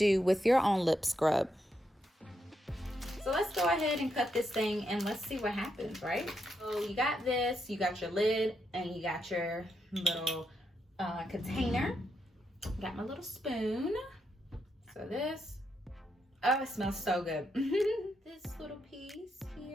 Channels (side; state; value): both; normal; correlation 0.81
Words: with your own lip scrub. So let's go ahead and cut this thing and let's see what happens, right? So you got this, you got your lid, and you got your little container. Got my little spoon. So this, oh, it smells so good. This little piece